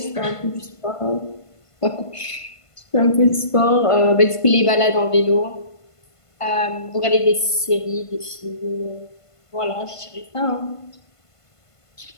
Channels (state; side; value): late; right; 1.5 ms